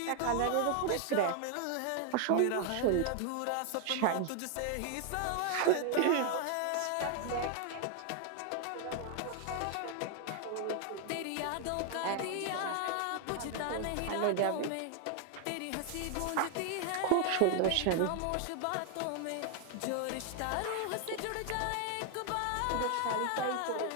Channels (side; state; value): both; different; correlation 0.00